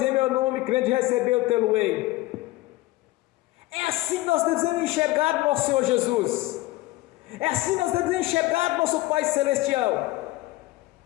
em meu nome, crente recebeu, tê-lo-ei. É assim que nós devemos enxergar o nosso Senhor Jesus. É assim que nós devemos enxergar o nosso Pai Celestial,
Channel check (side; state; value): right; quieter; 18.8 dB